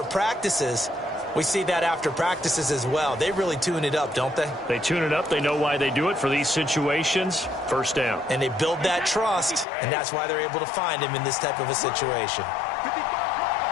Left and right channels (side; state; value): right; drops out; at 9.7 s